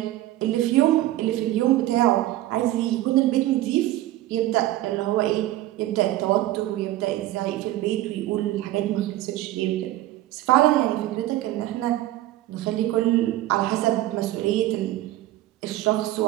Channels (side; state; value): left; quieter; 15.4 dB